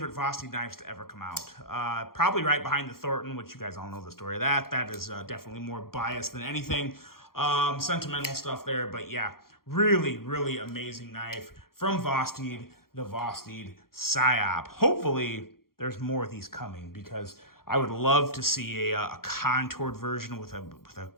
Vosteed knives to ever come out. Probably right behind the Thornton, which you guys all know the story of that. That is definitely more biased than anything. Sentimental stuff there, but yeah, really amazing knife from Vosteed, the Vosteed Psyop. Hopefully there's more of these coming because I would love to see a contoured version with a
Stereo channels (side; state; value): right; late; 0.93 ms